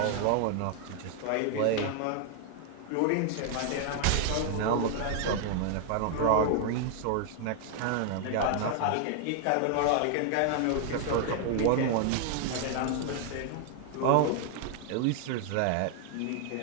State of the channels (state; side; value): different; both; correlation 0.00